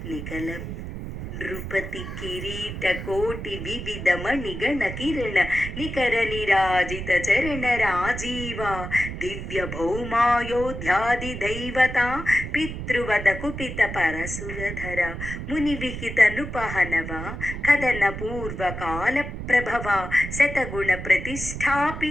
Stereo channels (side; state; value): right; noise; rumble, 7 dB below the sound